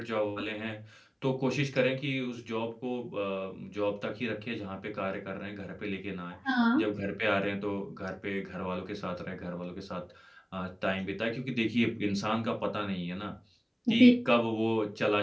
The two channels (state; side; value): identical; both; correlation 1.00